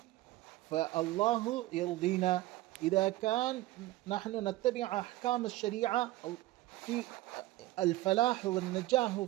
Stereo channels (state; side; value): quieter; left; 17.0 dB